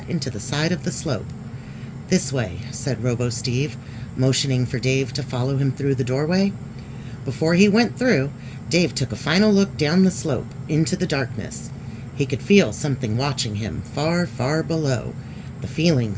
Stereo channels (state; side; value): identical; both; correlation 1.00